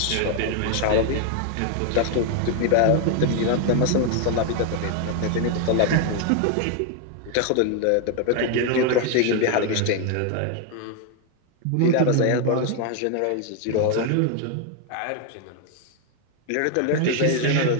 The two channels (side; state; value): both; different; correlation 0.01